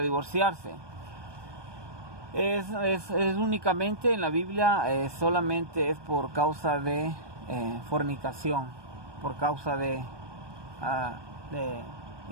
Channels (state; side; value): late; left; 1.2 ms